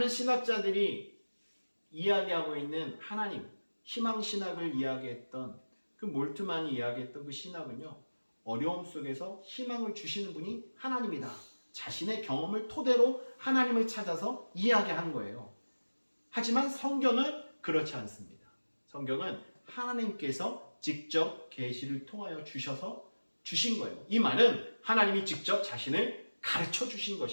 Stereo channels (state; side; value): inverted; both; correlation -1.00